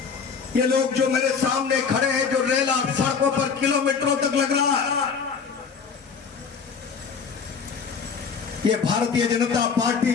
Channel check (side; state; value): right; quieter; 5.8 dB